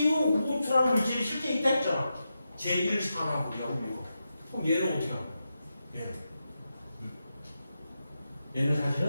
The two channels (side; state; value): both; inverted; correlation -0.88